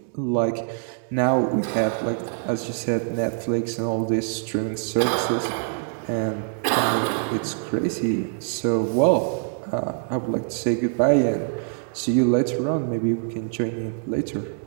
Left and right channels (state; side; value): silent; left; digital silence